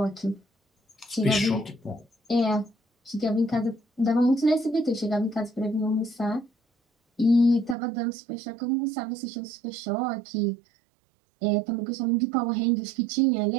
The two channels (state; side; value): drops out; left; at 7.8 s